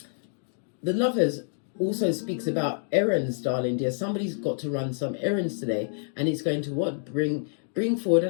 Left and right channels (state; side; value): silent; right; digital silence